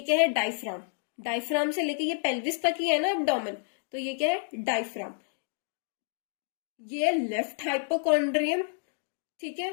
क्या है? डायफ्राम. डायफ्राम से लेके ये पेल्विस तक ही है ना एब्डोमेन, तो ये क्या है? डायफ्राम. ये लेफ्ट हाइपोकॉन्ड्रियम. ठीक है.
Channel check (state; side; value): silent; right; digital silence